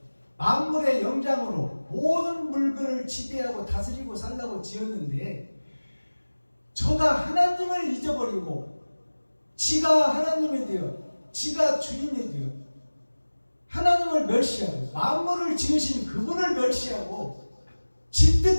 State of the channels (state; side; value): inverted; both; correlation -1.00